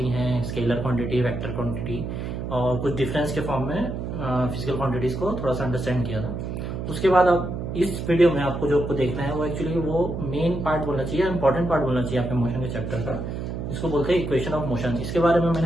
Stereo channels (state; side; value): noise; right; hum, 5 dB below the sound